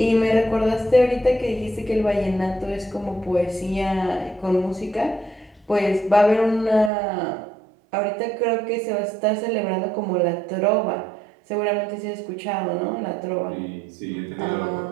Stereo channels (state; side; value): drops out; left; at 6.9 s